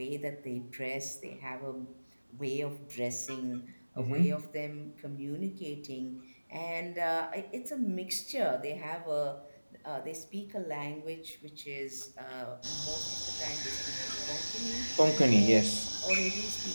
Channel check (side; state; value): both; inverted; correlation -1.00